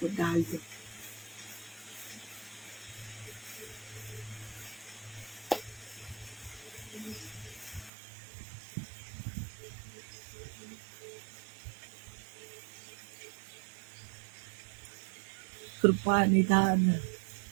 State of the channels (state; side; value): drops out; left; at 7.9 s